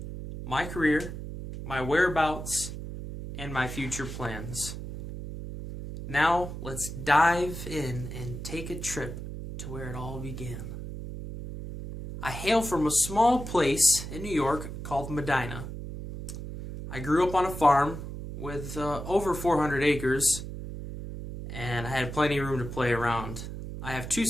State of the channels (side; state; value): right; noise; hum, 8 dB below the sound